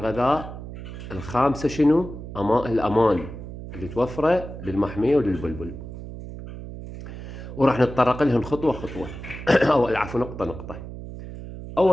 الخامسة شنو؟ الأمان اللي توفره للمحمية وللبلبل. وراح نتطرق لهم خطوة خطوة أو العفو نقطة نقطة.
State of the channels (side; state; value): right; noise; hum, 11 dB below the sound